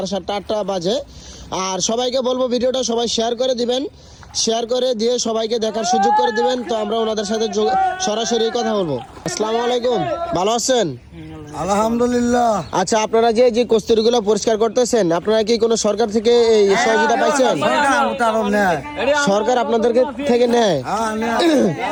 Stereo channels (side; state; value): both; identical; correlation 1.00